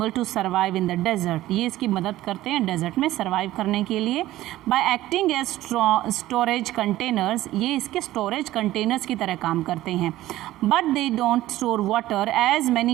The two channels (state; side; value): quieter; left; 15.4 dB